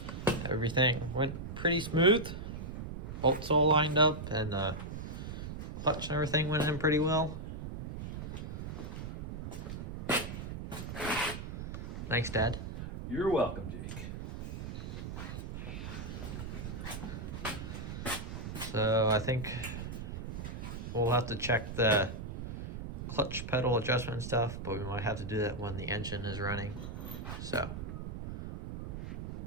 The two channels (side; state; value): right; noise; rumble, 7 dB below the sound